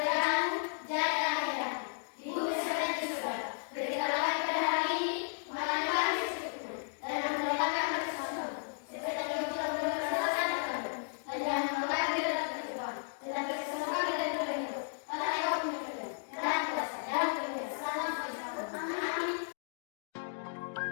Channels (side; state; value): right; silent; digital silence